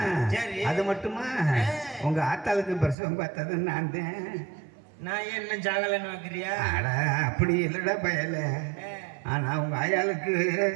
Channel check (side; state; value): left; drops out; at 3.0 s